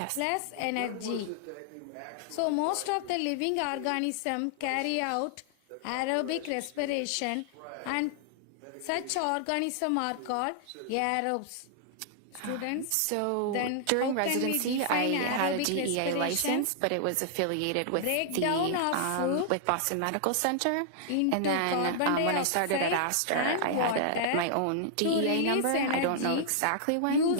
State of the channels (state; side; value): different; both; correlation -0.01